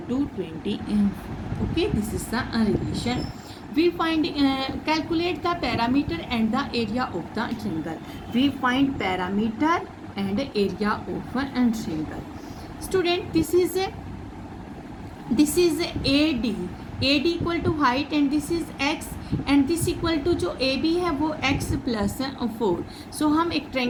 20. Okay, this is the relation. We find calculate the parameter and the area of the triangle. We find parameter and area of a triangle. Student, this is AD, AD equal to height, and this is x, and this equal to जो A B है वो x plus 4. सो हम एक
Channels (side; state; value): both; identical; correlation 1.00